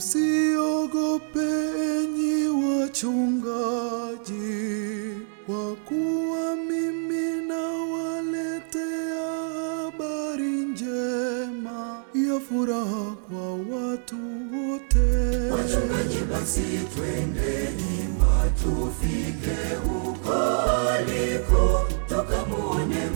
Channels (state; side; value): silent; left; 61 dB below the other